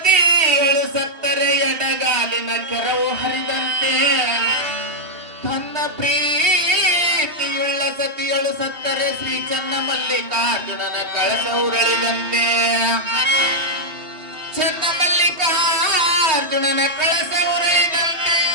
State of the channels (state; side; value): late; left; 3.2 ms